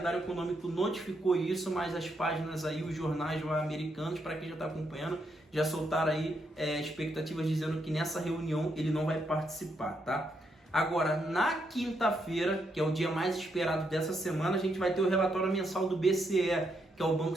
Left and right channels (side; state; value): both; normal; correlation 0.78